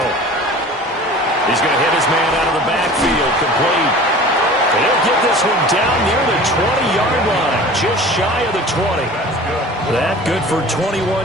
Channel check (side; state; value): both; normal; correlation 0.41